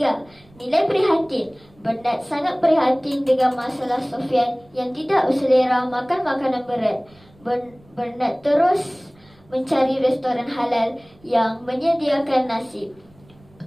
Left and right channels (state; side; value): noise; right; rumble, 28 dB below the sound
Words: nilai prihatin. Bernard sangat prihatin dengan masalah Sofian yang tidak berselera makan makanan berat. Bernard terus mencari restoran halal yang menyediakan nasi.